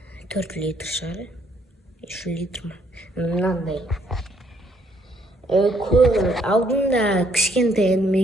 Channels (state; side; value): normal; both; correlation 0.68